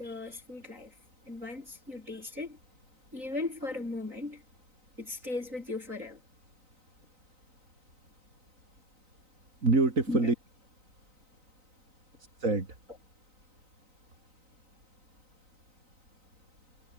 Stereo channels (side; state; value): left; late; 3.9 ms